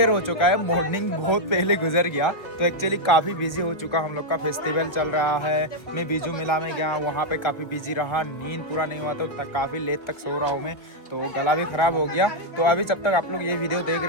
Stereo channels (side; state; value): right; late; 1.4 ms